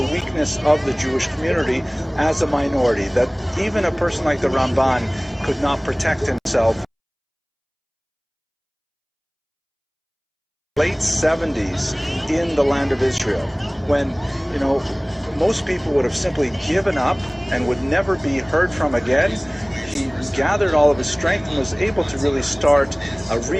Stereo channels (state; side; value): identical; both; correlation 1.00